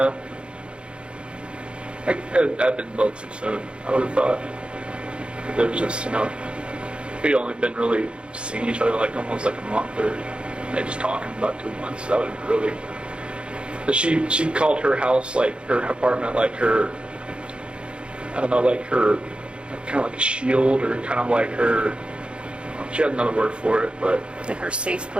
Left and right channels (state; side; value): late; left; 0.056 ms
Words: I've been both too soon, I would have thought. It was just, we'd only been really seeing each other like almost like a month, or they just talking about 2 months. That would have been really. She called her house, like her apartment, like her, I don't know, like her, kind of like a shield, or kind of like her, she had another word for it, but. Like her safe